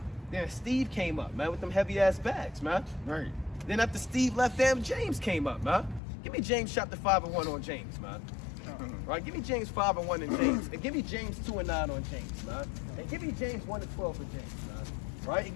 Then Steve came up, man, with them heavy ass bags, man. Right. Then after Steve left, damn James came up, man. Give me James chapter 5 and 1 on James, man. Right, give me James 5 and 1 in James, and give me James 2 and 9 on James, man. And give me James 1 and 12 for James, man. Right, and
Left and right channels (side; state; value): right; drops out; at 6.0 s